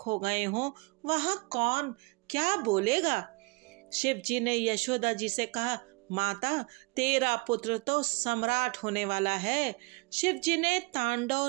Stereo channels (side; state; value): left; quieter; 27.7 dB